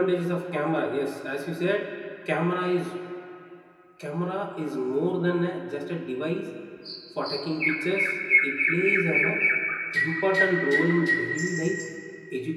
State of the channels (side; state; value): both; identical; correlation 1.00